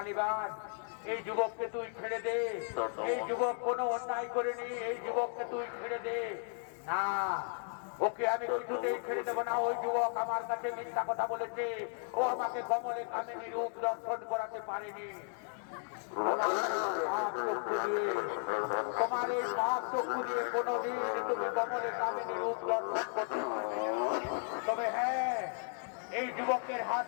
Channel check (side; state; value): right; silent; 54 dB below the other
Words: এই যুবককে তুই ছেড়ে দে। এই যুবক কোনো অন্যায় করেনি, এই যুবককে তুই ছেড়ে দে। না, ওকে আমি কিছুতেই ছেড়ে দেবো না। ওই যুবক আমার কাছে মিথ্যা কথা বলেছে, ও আমাকে কমলে কামিনী রূপ দর্শন করাতে পারেনি। তোমার এই পাপ চক্ষু দিয়ে কোনোদিন তুমি কমলে কামিনী রূপ দর্শন করতে পারবে। তবে হ্যাঁ, এই যুবকের হাত